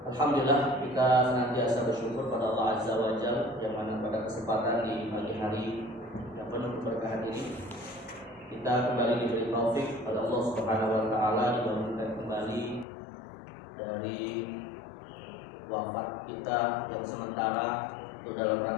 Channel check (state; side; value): drops out; right; at 12.9 s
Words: Alhamdulillah kita senantiasa bersyukur pada Allah Azza wa Jalla yang mana pada kesempatan di pagi hari yang penuh keberkahan ini kita kembali diberi taufik pada Allah Subhanahu wa taala dibangunkan kembali dari wafat kita yang sementara itu dalam